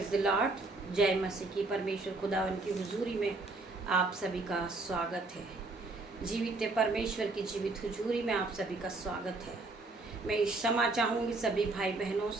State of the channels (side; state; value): left; quieter; 3.2 dB